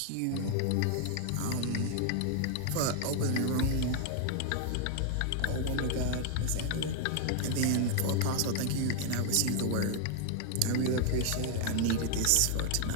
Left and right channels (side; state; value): both; different; correlation 0.00